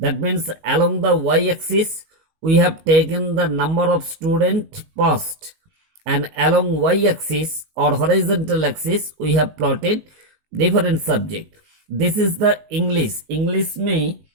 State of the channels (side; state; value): left; late; 19 ms